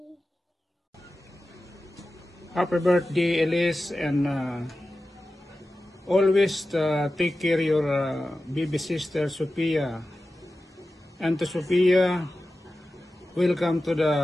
Happy birthday, Elise, and always take care of your baby sister, Sophia. And to Sophia, welcome to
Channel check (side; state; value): both; normal; correlation 0.94